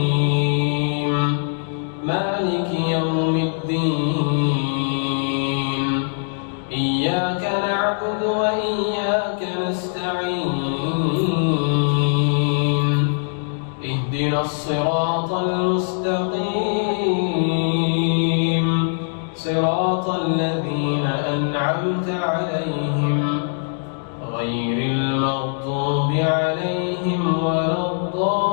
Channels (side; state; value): right; silent; digital silence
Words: مالك يوم الدين إياك نعبد وإياك نستعين اهدنا الصراط المستقيم صراط الذين أنعمت عليهم غير المغضوب عليهم ولا